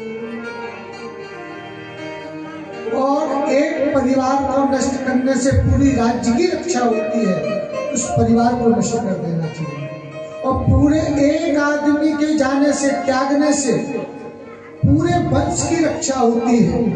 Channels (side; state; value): both; identical; correlation 1.00